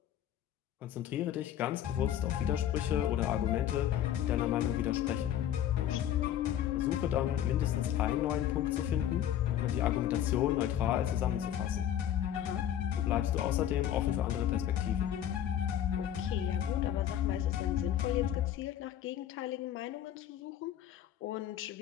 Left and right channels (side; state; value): right; quieter; 11.0 dB